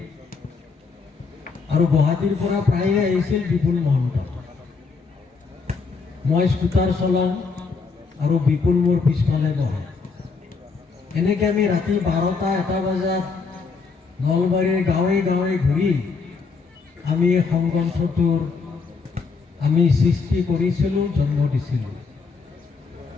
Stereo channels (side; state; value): right; quieter; 4.8 dB